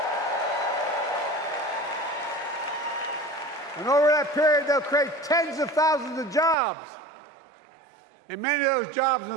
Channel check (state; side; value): drops out; left; at 6.6 s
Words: And over that period, they'll create tens of thousands of jobs. And many of those jobs in